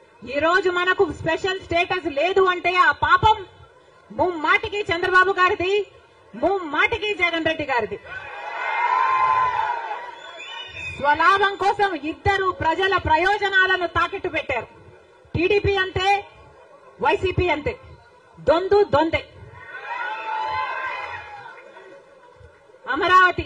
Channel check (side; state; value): both; identical; correlation 1.00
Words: ఈ రోజు మనకు స్పెషల్ స్టేటస్ లేదు అంటే ఆ పాపం ముమ్మాటికి చంద్రబాబు గారిది, ముమ్మాటికి జగన్ రెడ్డి గారిది. స్వలాభం కోసం ఇద్దరు ప్రజల ప్రయోజనాలను తాకట్టు పెట్టారు. టీడీపీ అంతే, వైసీపీ అంతే, దొందే. అమరావతి